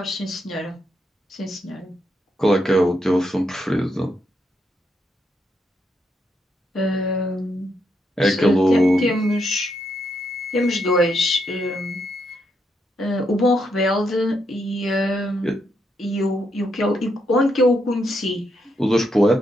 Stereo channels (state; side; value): normal; both; correlation 0.79